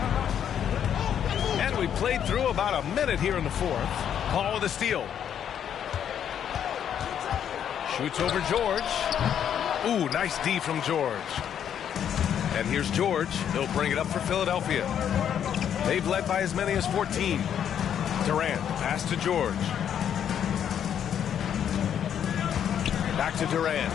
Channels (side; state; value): right; quieter; 9.1 dB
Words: And we played through about a minute here in the fourth. Paul with a steal. Shoots over George. Ooh, nice D from George. And here's George. He'll bring it up for Philadelphia. They've led by as many as 14. Durant, pass to George. Back to Durant.